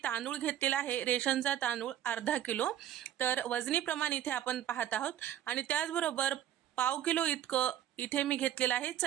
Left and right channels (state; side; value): quieter; left; 11.4 dB